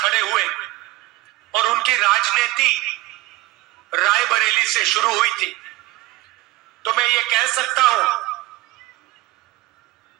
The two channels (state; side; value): quieter; left; 19.0 dB